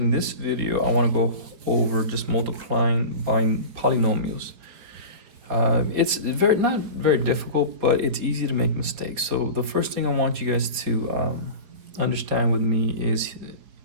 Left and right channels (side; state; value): left; late; 4.8 ms